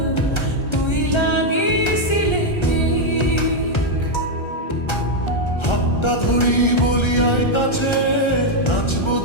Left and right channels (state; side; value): late; right; 1.3 ms